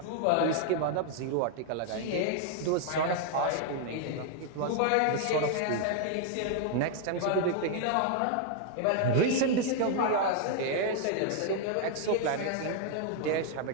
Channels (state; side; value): different; both; correlation 0.00